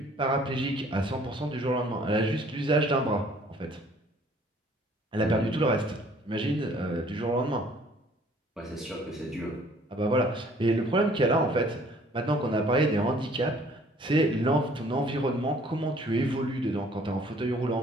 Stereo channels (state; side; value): normal; both; correlation 0.57